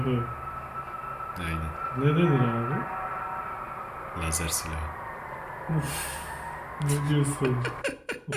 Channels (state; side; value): identical; both; correlation 1.00